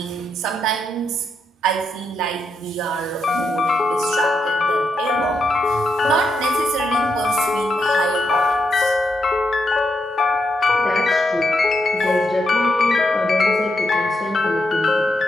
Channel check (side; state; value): both; normal; correlation 0.82